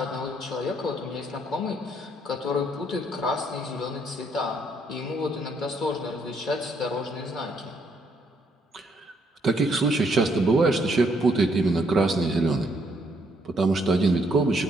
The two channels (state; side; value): normal; both; correlation 0.71